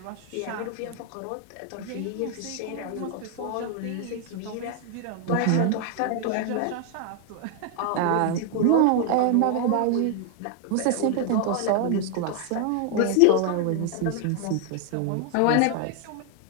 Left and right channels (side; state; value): both; different; correlation 0.00